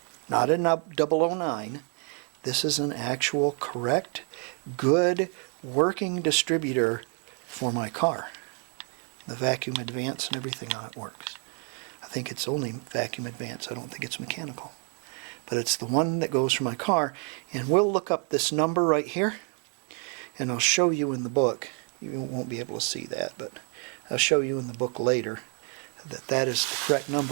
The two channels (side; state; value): left; quieter; 39.4 dB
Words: Not a 009. This is an actual correct, good, working distributor for my car. The vacuum advance and everything on it works. I think it's only vacuum advance. I don't think it's mechanical. But it's the one that goes for my car. And we'll look up this number right here. And I'll show you in the book. You won't be able to see that, but I'll show you in the book later that that is the correct